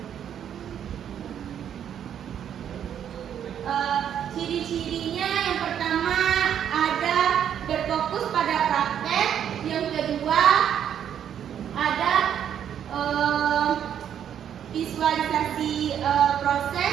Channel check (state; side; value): quieter; left; 9.3 dB